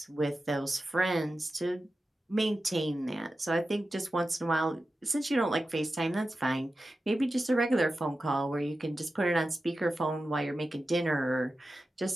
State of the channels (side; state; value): both; normal; correlation 0.93